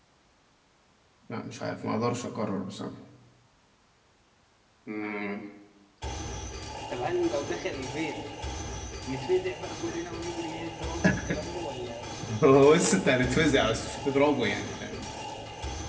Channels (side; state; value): both; identical; correlation 1.00